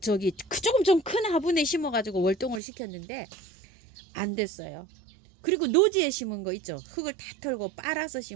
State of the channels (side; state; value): left; drops out; at 2.6 s